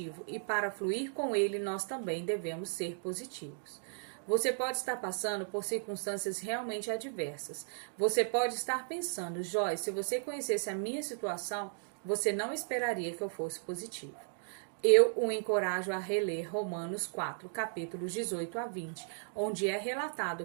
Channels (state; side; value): silent; left; digital silence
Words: e para fluir com Ele nós também devemos ser positivos. Você pode estar passando por circunstâncias realmente adversas. Você pode estar pensando, Joyce, se você conhecesse a minha situação, você não esperaria que eu fosse positivo. Eu o encorajo a reler Romanos 4, capítulos 18 a 20, onde é